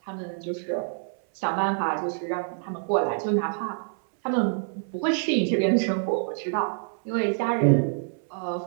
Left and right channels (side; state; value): left; silent; 61 dB below the other